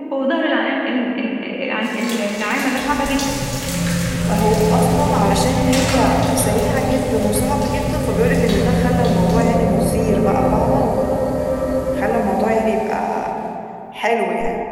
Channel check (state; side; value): identical; both; correlation 1.00